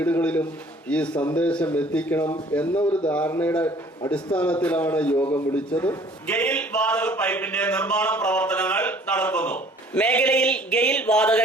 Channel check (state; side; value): normal; both; correlation 0.54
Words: ഈ സന്ദേശം എത്തിക്കണം എന്ന ഒരു ധാരണയുടെ അടിസ്ഥാനത്തിലാണ് യോഗം വിളിച്ചത്. ഗെയിൽ വാതക പൈപ്പിന്റെ നിർമ്മാണ പ്രവർത്തനങ്ങൾ നടക്കുന്നു. മേഖലയിൽ ഗെയിൽ വാതക